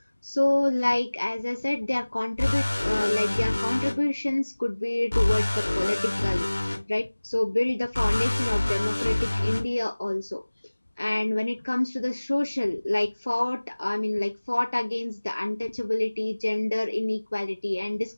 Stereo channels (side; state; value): both; inverted; correlation -1.00